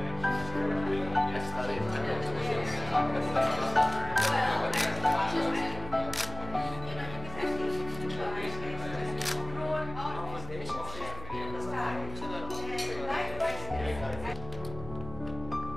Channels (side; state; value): right; noise; hum, 12 dB below the sound